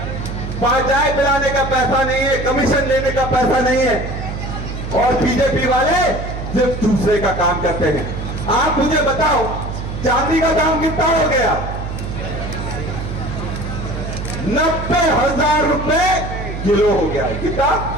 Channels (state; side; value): noise; right; hum, 6 dB below the sound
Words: चाय पिलाने का पैसा नहीं है, कमीशन लेने का पैसा नहीं है, और बीजेपी वाले सिर्फ दूसरे का काम करते हैं। आप मुझे बताओ, चांदी का दाम कितना हो गया? 90,000 रुपए किलो हो गया। कितना